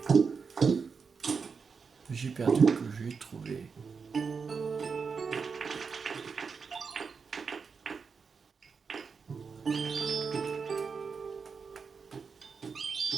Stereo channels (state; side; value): quieter; left; 5.4 dB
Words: Le jeu perdu que j'ai trouvé.